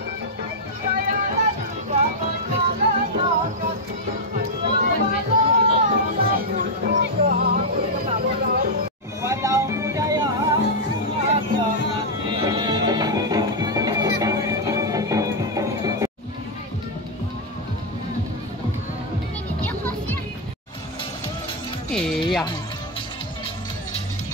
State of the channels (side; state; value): both; normal; correlation -0.01